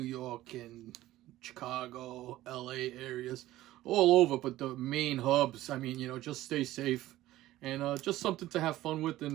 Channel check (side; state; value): left; quieter; 15.5 dB